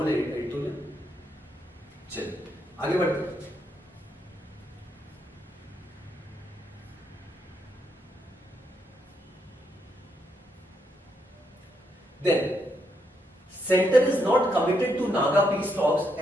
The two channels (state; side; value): normal; both; correlation 0.78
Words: editorial. चलिए आगे बढ़ते हैं। Then centre is not committed to Naga peace talks